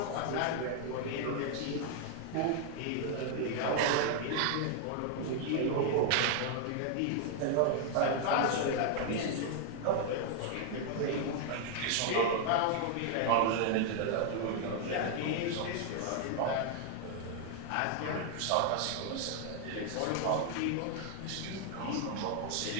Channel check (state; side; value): different; both; correlation 0.00